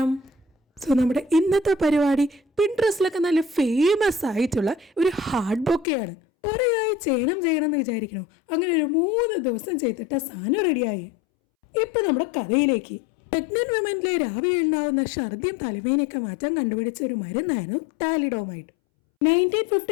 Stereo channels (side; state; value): right; drops out; at 5.9 s